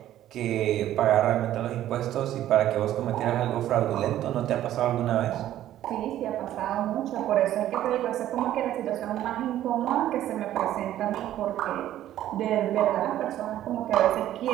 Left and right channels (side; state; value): left; quieter; 12.7 dB